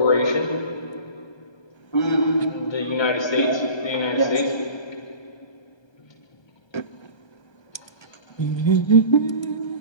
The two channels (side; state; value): right; late; 1.3 ms